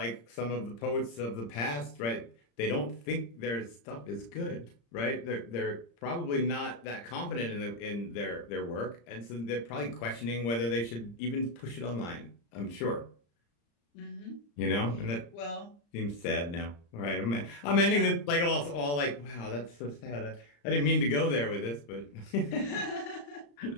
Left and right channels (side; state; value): right; late; 35 ms